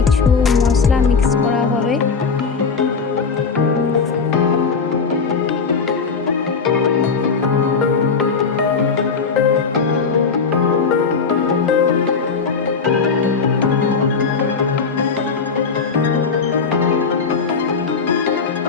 মশলা মিক্স করা হবে।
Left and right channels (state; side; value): quieter; right; 5.2 dB